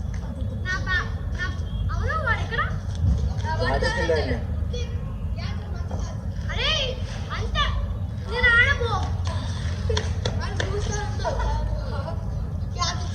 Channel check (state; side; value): identical; both; correlation 1.00